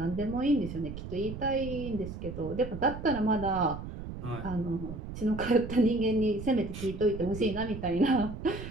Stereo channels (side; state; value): right; noise; rumble, 9 dB below the sound